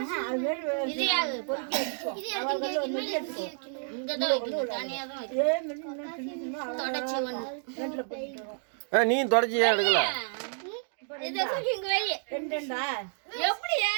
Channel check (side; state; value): left; silent; 58 dB below the other